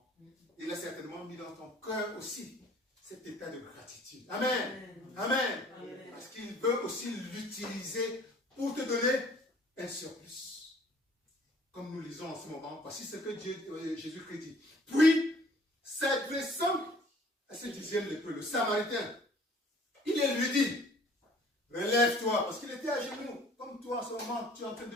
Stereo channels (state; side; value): normal; both; correlation 0.54